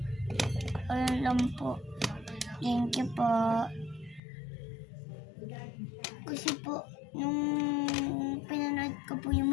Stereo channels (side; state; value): right; drops out; at 4.2 s